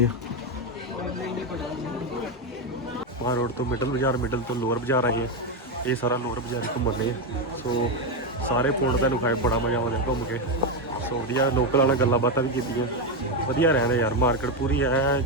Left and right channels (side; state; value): both; normal; correlation 0.08